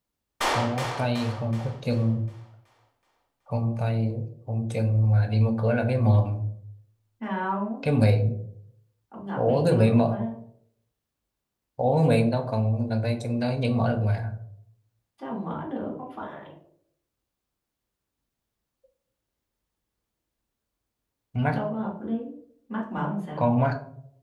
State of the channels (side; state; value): both; identical; correlation 1.00